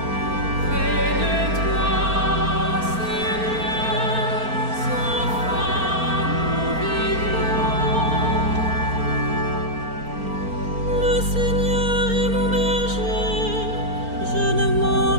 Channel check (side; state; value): left; late; 4.4 ms